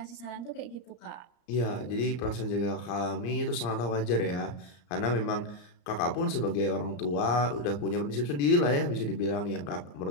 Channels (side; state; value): right; late; 34 ms